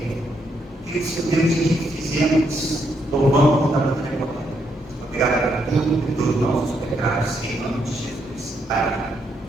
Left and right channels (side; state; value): both; normal; correlation 0.77